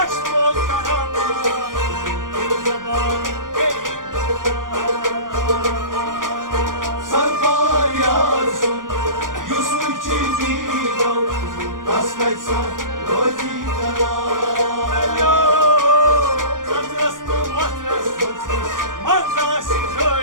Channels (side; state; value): left; late; 0.89 ms